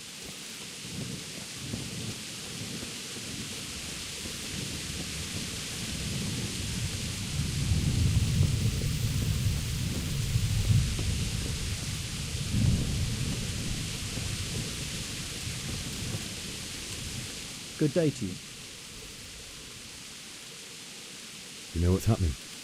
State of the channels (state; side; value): identical; both; correlation 1.00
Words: Good day to you. You know what's happening?